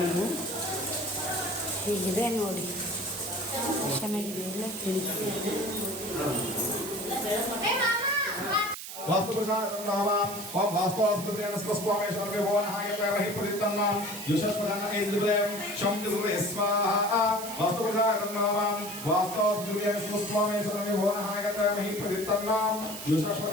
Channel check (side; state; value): right; noise; hiss, 9 dB below the sound